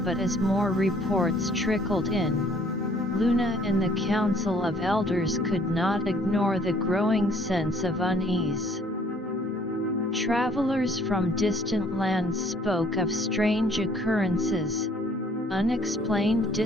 but as more reports trickled in, Luna and the Council of Elders could not ignore the growing sense of unease. Travelers from distant lands spoke of strange occurrences, unexplained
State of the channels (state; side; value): normal; both; correlation 0.60